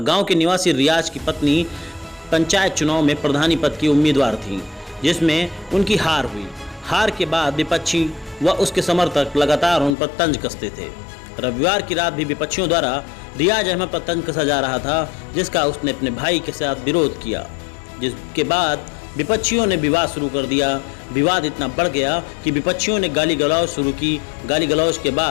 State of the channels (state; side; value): drops out; right; at 10.0 s